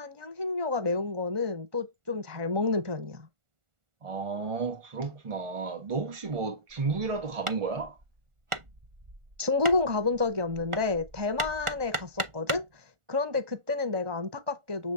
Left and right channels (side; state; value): left; late; 1.4 ms